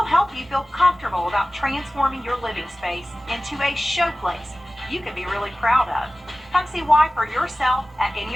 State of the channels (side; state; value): both; normal; correlation 0.97